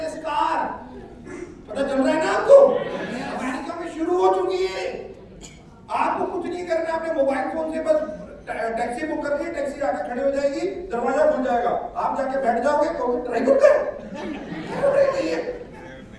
कार, पता चल रहा है ना आपको? अमेरिका में शुरू हो चुकी है। आपको कुछ नहीं करना, अपने मोबाइल फोन से बस टैक्सी बुक करके टैक्सी आके खड़ी हो जाएगी, दरवाजा खुल जाएगा, आप जाके बैठ जाओगे तो ड्राइवर का नहीं है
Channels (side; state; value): both; identical; correlation 1.00